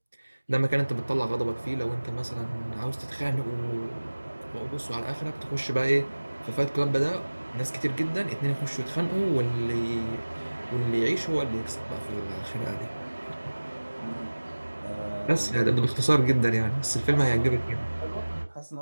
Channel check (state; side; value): inverted; both; correlation -1.00